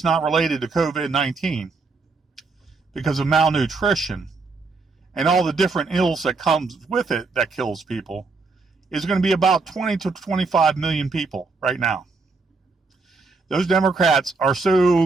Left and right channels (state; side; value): quieter; left; 4.0 dB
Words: not related to COVID-19 because of malnutrition and all the different ills that comes with it that kills people, is going to be about 20 to 25 million people right now. Those Democrats are